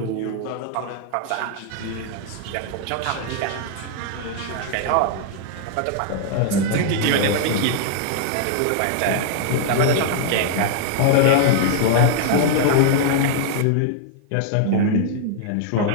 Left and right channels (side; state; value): both; different; correlation -0.01